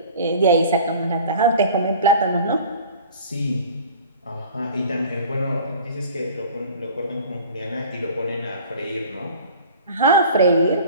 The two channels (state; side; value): inverted; both; correlation -0.43